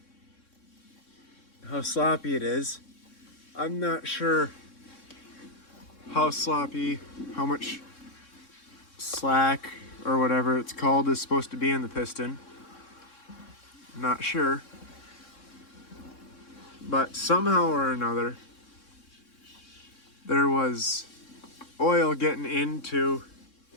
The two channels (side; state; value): right; late; 3.6 ms